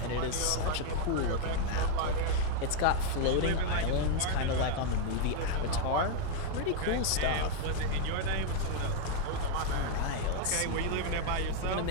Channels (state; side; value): different; both; correlation 0.00